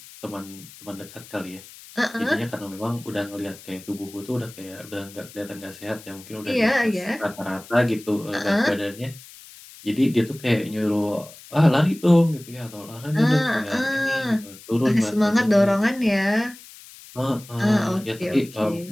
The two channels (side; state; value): left; noise; hiss, 19 dB below the sound